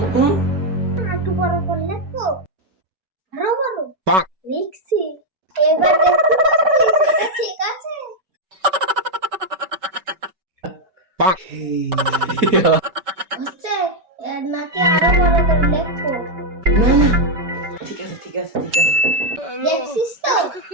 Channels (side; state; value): left; late; 5.2 ms